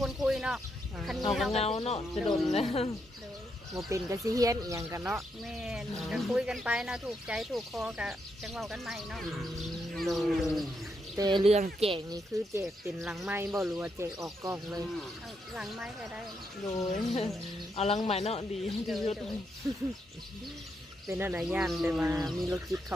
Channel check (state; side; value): normal; both; correlation 0.80